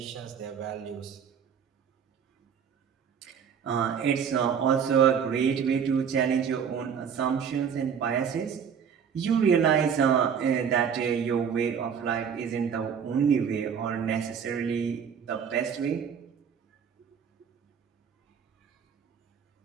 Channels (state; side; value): quieter; left; 7.4 dB